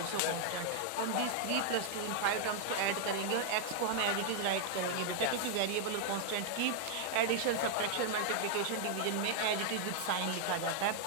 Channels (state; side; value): different; both; correlation 0.00